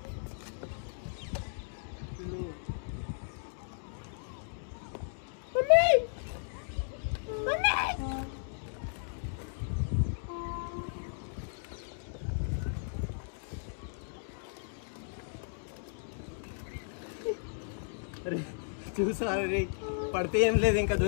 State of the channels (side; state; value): right; silent; digital silence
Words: చూసారు రే, పడితే ఏం లేదు, ఇంకా